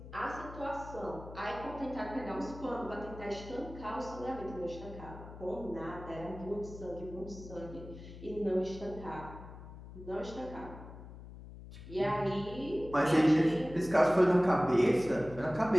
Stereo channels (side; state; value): left; noise; hum, 14 dB below the sound